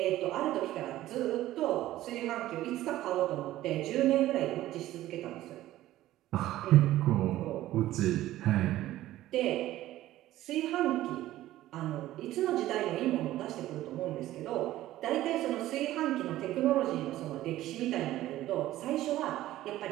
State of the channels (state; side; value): quieter; left; 14.8 dB